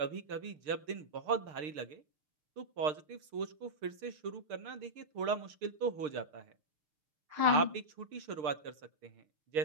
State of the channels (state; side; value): late; left; 6.6 ms